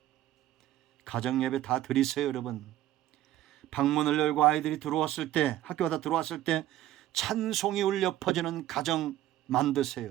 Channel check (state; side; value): quieter; left; 13.5 dB